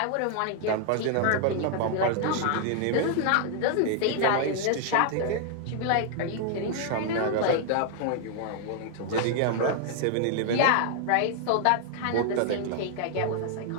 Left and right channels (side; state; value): both; different; correlation 0.00